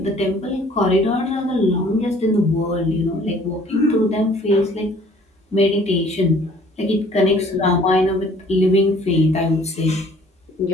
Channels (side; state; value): both; normal; correlation 0.55